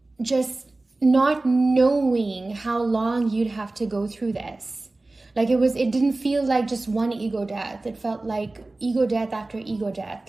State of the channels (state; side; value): quieter; left; 3.0 dB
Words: just not knowing how long you'd have to go through this. Like it didn't feel like just one ego death. It felt like ego death after ego